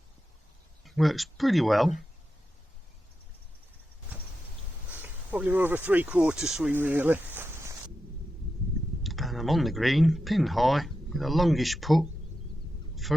Works pretty well. Probably more of a 3/4 swing really. And I'm on the green, pin high, with a longish putt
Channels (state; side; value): normal; both; correlation 0.89